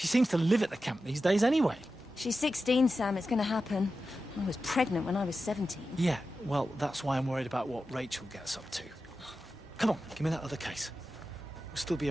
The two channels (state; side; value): normal; both; correlation 0.92